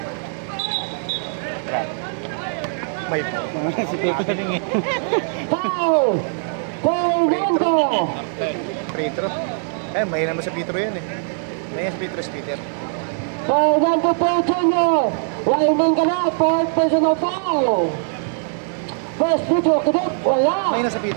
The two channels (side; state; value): left; silent; 65 dB below the other